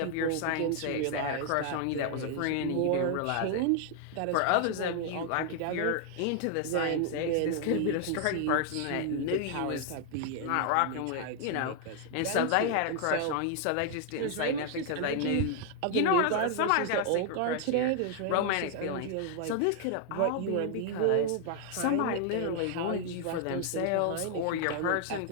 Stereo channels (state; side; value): different; both; correlation 0.00